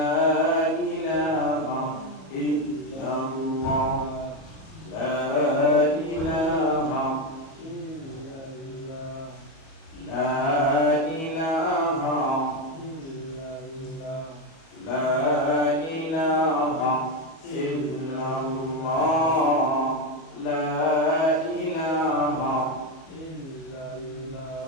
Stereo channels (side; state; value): right; late; 37 ms